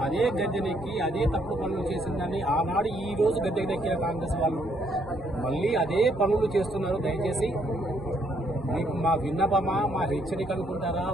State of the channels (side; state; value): both; normal; correlation 0.71